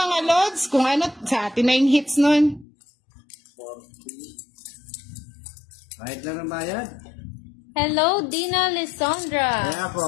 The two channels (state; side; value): drops out; right; at 2.7 s